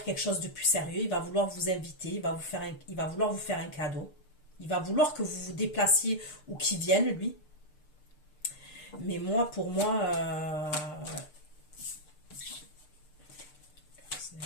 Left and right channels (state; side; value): late; right; 6.7 ms